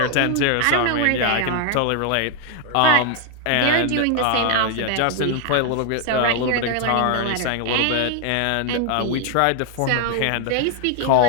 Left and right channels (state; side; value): different; both; correlation 0.00